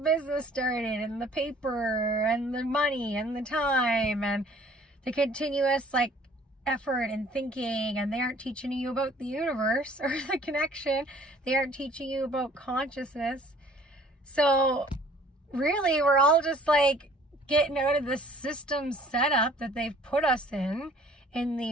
started, and the paper and the money and the time and the continuous like effort and thinking. And they aren't teaching you about the universe or the connection. They aren't teaching you about consciousness. So really, we're all just like getting out of this system setup that they've put us in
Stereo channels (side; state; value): both; normal; correlation 0.55